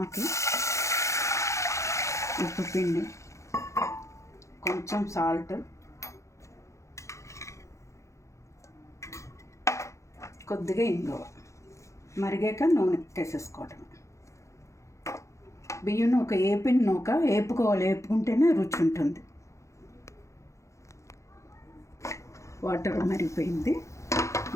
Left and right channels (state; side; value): late; right; 0.14 ms